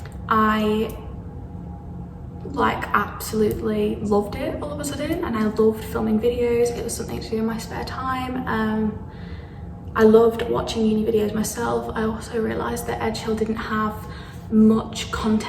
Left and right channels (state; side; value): identical; both; correlation 1.00